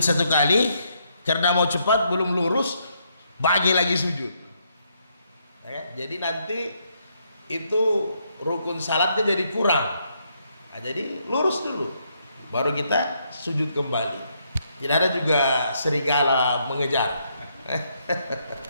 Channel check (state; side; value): inverted; both; correlation -0.75